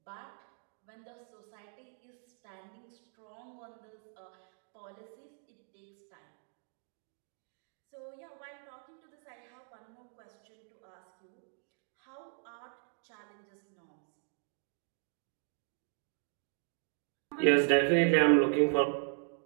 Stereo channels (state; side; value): silent; left; 53 dB below the other